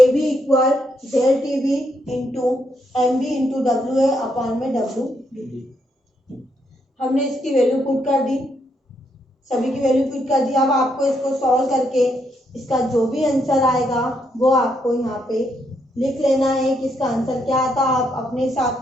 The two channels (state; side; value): normal; both; correlation 0.77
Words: B equal del T B into M B into W A upon में डब्ल्यू डी। हमने इसकी वैल्यू पुट कर दी, सभी की वैल्यू पुट कर दी। अब आपको इसको सॉल्व करके इसका जो भी आंसर आएगा वो आपको यहाँ पे लिख लेना है कि इसका आंसर क्या आता। आप अपने